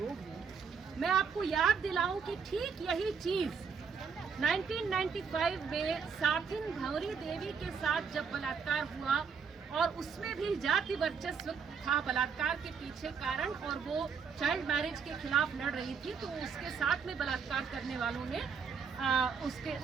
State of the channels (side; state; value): left; quieter; 6.1 dB